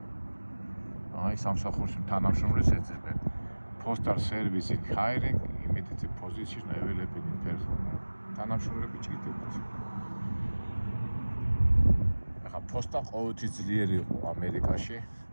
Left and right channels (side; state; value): both; inverted; correlation -1.00